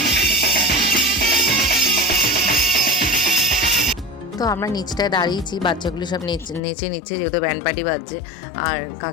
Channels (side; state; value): right; drops out; at 6.6 s